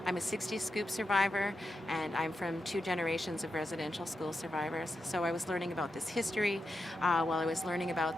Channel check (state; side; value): normal; both; correlation 0.87